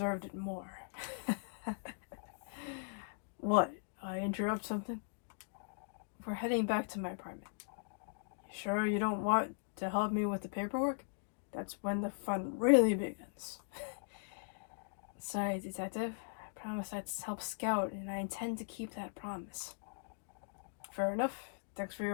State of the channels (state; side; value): silent; right; digital silence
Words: it more. What? I interrupt something? We're heading back to my apartment. You sure you don't want to help me with the paperwork? That's when the fun really begins. Sorry, Detective. I promised I'd help Scout, and I intend to keep that promise. Fair enough. Thanks for